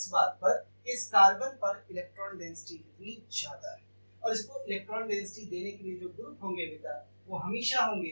बात पर कि इस कार्बन पर इलेक्ट्रॉन डेंसिटी कितनी ज्यादा है, और इसको इलेक्ट्रॉन डेंसिटी देने के लिए जो ग्रुप होंगे बेटा वो हमेशा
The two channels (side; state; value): both; inverted; correlation -1.00